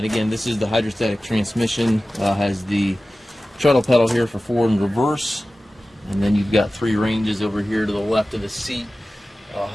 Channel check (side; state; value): both; normal; correlation 0.96